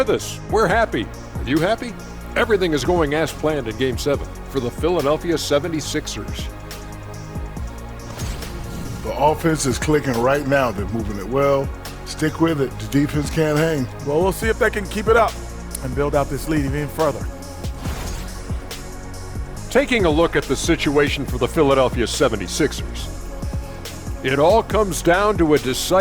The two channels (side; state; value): both; identical; correlation 1.00